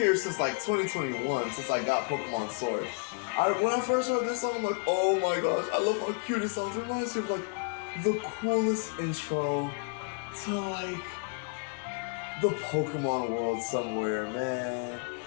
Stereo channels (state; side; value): quieter; right; 38.6 dB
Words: since like 2021, since I got Pokemon Sword. When I first heard this song, I'm like, oh my gosh, I love how cute it sounds. It reminds me of like the coolest intro to like the Pokemon world somewhere, man.